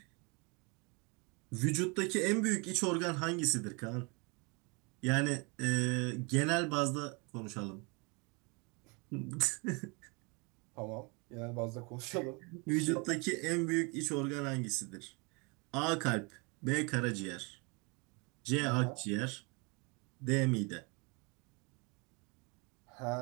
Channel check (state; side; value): quieter; left; 30.5 dB